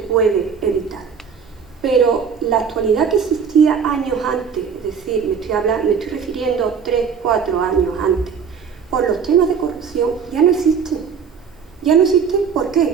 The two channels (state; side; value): quieter; left; 6.5 dB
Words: evitar. Pero la actualidad que existía años antes, es decir, me estoy refiriendo 3, 4 años antes, por los temas de corrupción, ya no existe. Ya no existen, ¿por